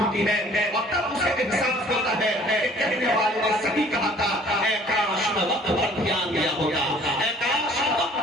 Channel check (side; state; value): both; normal; correlation 0.54